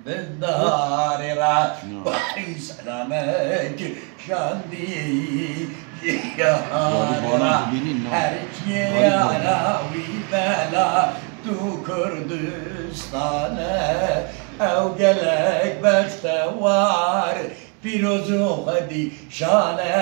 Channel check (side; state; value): left; quieter; 36.8 dB